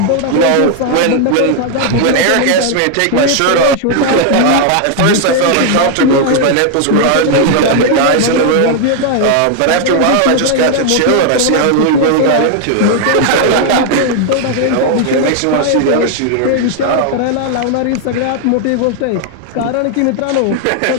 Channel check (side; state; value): both; different; correlation 0.00